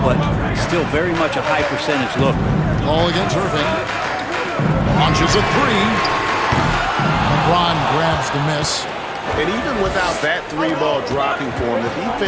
still very much a high percentage look. Ball against Irving. Launches a 3. LeBron grabs the miss. And even without that 3-ball dropping for him, the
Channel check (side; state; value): both; identical; correlation 1.00